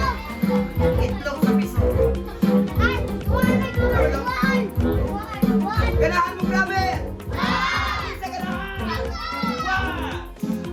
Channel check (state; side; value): identical; both; correlation 1.00